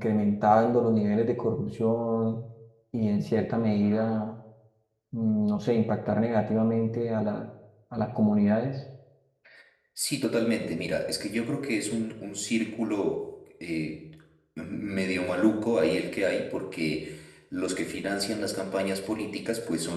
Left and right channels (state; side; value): identical; both; correlation 1.00